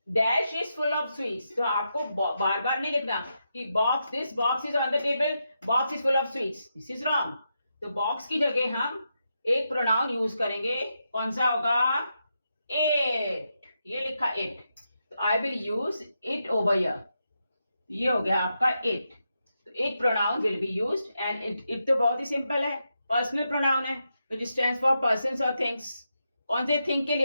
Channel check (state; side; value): inverted; both; correlation -0.85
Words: Dash is full of sweets. तो आपको बार बार नहीं लिखना कि box, this box is on the table, box is full of sweets. This is wrong. तो बॉक्स की जगह हम एक प्रोनाउन यूज करेंगे. कौन सा होगा? इट. ये लिखा इट. तो I will use it over here. ये हो गया आपका इट. तो it pronoun will be used and it तो बहुत ही सिंपल है. पर्सनल प्रोनाउन है विच स्टैंड्स फॉर पर्सन्स और थिंग्स. कौन से थिंग के